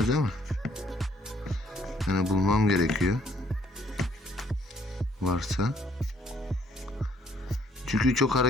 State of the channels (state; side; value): normal; both; correlation 0.65